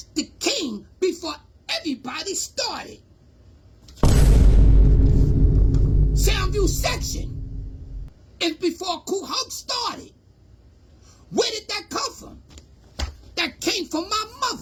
the king before everybody started. Soundview section is before Kool Herc started. Where did that come from? That came from my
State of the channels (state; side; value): identical; both; correlation 1.00